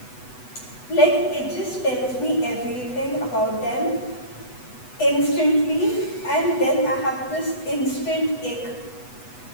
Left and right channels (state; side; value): late; right; 8.1 ms